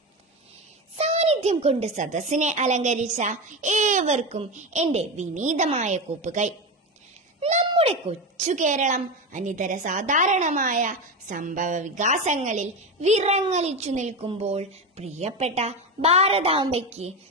സാന്നിധ്യം കൊണ്ട് സദസ്സിനെ അലങ്കരിച്ച ഏവർക്കും എൻ്റെ വിനീതമായ കൂപ്പുകൈ. നമ്മുടെ കൊച്ചു കേരളം അനിതര സാധാരണമായ സംഭവ വികാസങ്ങളിൽ വിറങ്ങലിച്ചു നിൽക്കുമ്പോൾ പ്രിയപ്പെട്ട ഭാരതാംബയ്ക്ക്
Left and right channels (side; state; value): both; normal; correlation 0.19